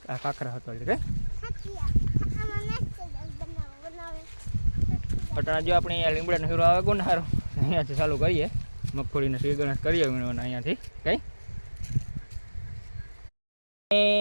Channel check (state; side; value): inverted; both; correlation -1.00